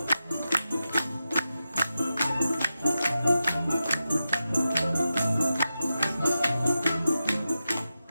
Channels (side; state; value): both; inverted; correlation -0.90